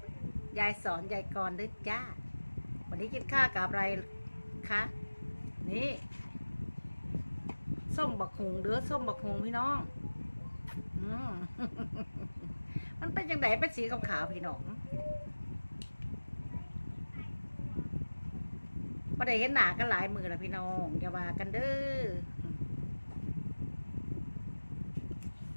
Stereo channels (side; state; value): both; inverted; correlation -1.00